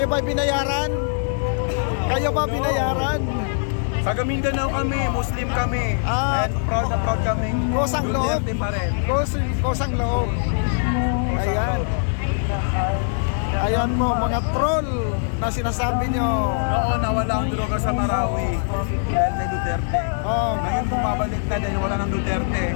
ba binayaran? Kayo ba binayaran? Taga Mindanao kami, Muslim kami. Ah, And proud na proud kami. kusang loob. Duterte pa rin. Kusang loob. Ayan. Ayan mo mga troll na sinasabi nyo. Oo, nawala ang droga sa Marawi. Dahil kay Duterte. Oh, Ngayon bumabalik na dahil wala ng Duterte.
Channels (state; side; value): silent; right; 63 dB below the other